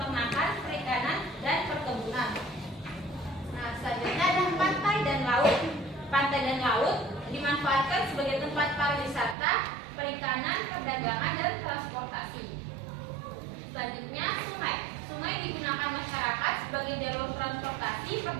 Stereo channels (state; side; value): drops out; left; at 9.3 s